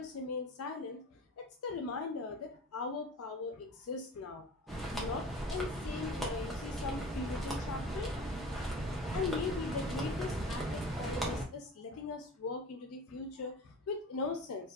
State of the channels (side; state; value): both; normal; correlation 0.38